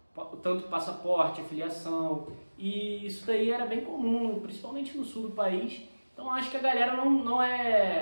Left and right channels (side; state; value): both; inverted; correlation -1.00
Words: tanto passaporte, filiação, e isso daí era bem comum, principalmente no sul do país. Então acho que a galera